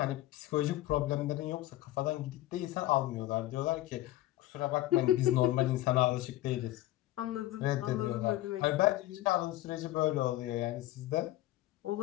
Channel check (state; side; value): quieter; right; 15.8 dB